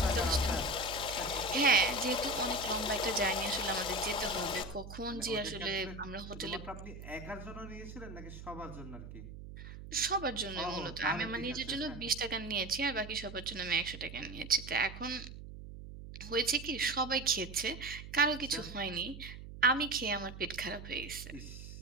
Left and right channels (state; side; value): noise; right; hum, 12 dB below the sound